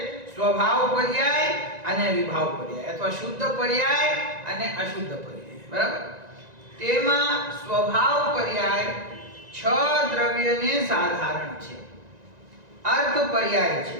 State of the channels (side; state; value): left; late; 1.9 ms